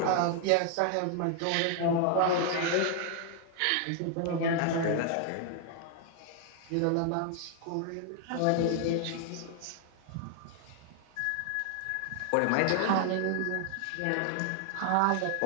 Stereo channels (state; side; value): different; both; correlation 0.00